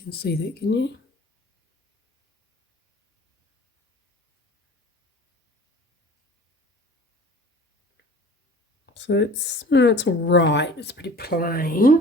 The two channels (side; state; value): both; normal; correlation 0.45